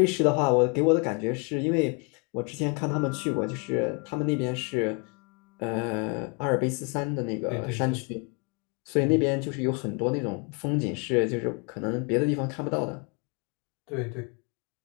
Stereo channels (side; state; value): right; quieter; 34.0 dB